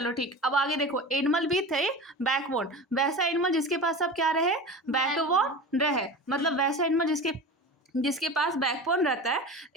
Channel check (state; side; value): normal; both; correlation 0.31